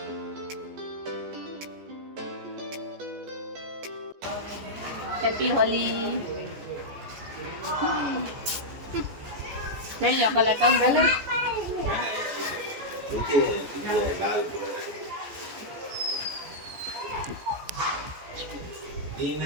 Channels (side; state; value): left; late; 14 ms